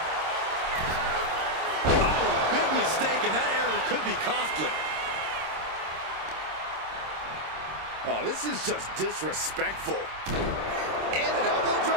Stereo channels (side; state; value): left; late; 26 ms